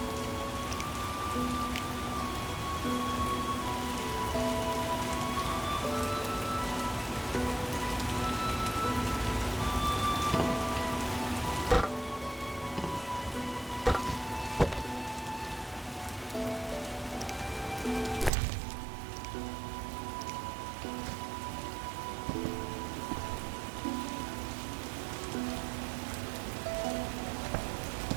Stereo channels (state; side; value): drops out; left; at 18.3 s